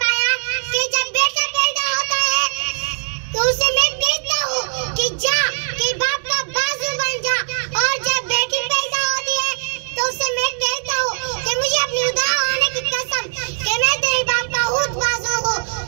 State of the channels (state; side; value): silent; left; digital silence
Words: कि जब बेटा पैदा होता है तो उसे मैं कहता हूँ कि जा कि बाप का बाजू बन जा, और जब बेटी पैदा होती है तो उसे मैं कहता हूँ कि मुझे अपनी खुदा होने की कसम कि मैं तेरे बाप का खुद बाजू हूँ।